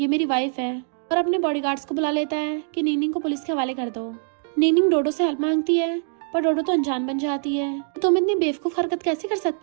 मेरी वाइफ है, और अपने बॉडीगार्ड्स को बुला लेता है कि निंगनिंग को पुलिस के हवाले कर दो। निंगनिंग डोडो से हेल्प मांगती है, पर डोडो तो अनजान बन जाती है। तुम इतनी बेवकूफ हरकत कैसे कर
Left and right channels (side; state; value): left; silent; 63 dB below the other